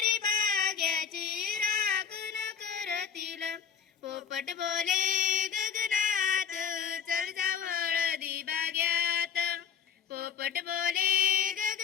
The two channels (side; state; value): right; quieter; 7.2 dB